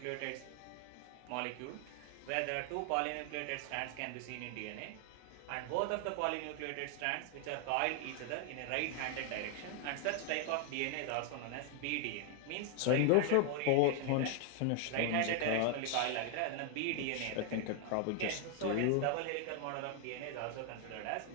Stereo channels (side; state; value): both; different; correlation 0.00